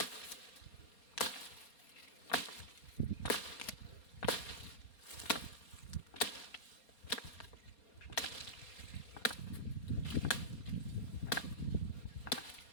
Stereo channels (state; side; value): late; right; 4.3 ms